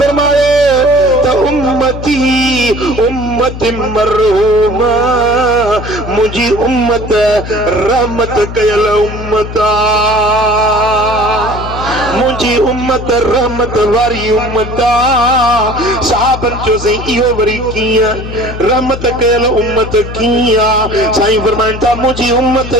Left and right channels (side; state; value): left; noise; hum, 9 dB below the sound